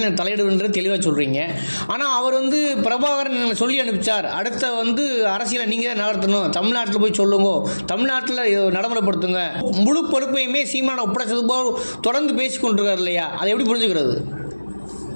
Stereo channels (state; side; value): inverted; both; correlation -1.00